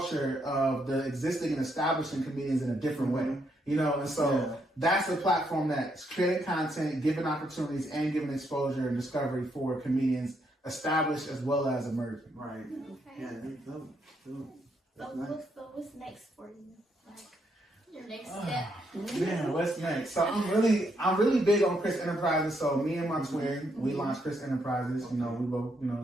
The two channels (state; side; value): normal; both; correlation 0.76